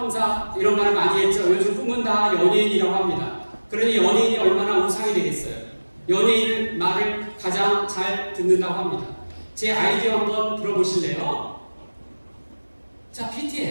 이런 말을 많이 했죠. 요즘 꿈은 다 연예인이라고 합니다. 그러니 연예인이 얼마나 우상이 되겠어요. 연예인 말을 가장 잘 듣는다고 합니다. 제 아이디어 한번 들어보실래요? 자,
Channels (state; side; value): inverted; both; correlation -1.00